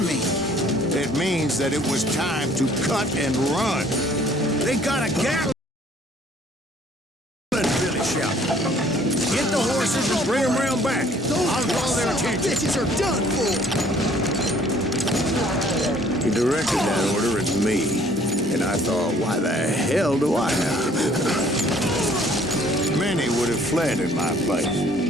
mean? It means that it was time to cut and run. "They got a gap!" Billy shouted. "Get the horses and bring them round back. I'll draw their attention." Bitches are done for. He directed that order at me, and I thought, why the hell do I have to do it? Many would have fled in my place.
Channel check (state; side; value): normal; both; correlation 0.58